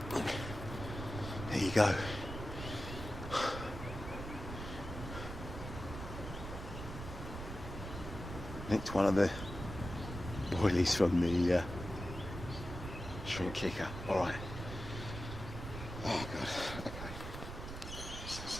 There you go. Nicked one of the boilies from the shrimp kicker. Alright. Oh god. Okay.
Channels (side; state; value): right; noise; rumble, 8 dB below the sound